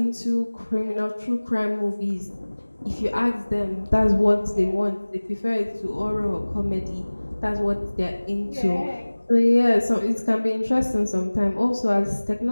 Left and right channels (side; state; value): both; inverted; correlation -1.00